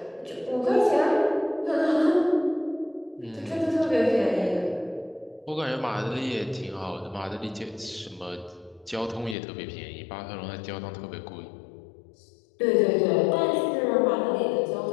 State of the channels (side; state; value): right; drops out; at 9.3 s